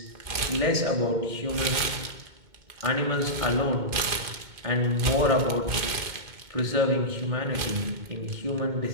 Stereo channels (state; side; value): late; left; 2.2 ms